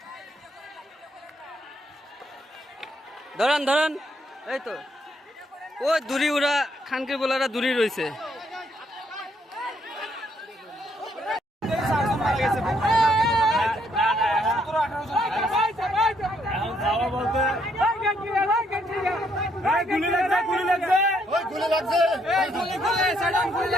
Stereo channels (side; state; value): both; normal; correlation 0.72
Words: ধরান এই তো ও দূরি ওরা খানকির বলারা দূরি রয়েছে।